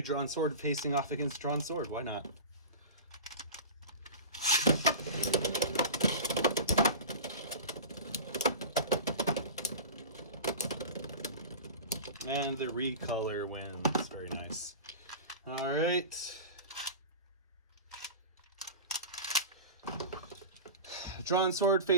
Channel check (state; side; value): inverted; both; correlation -0.32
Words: Drawn Sword facing off against Drawn Sword. Why not? And the recolor wins. Very nice. All right. Drawn Sword